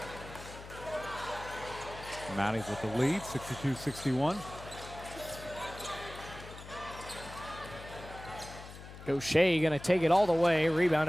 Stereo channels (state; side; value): noise; left; hum, 14 dB below the sound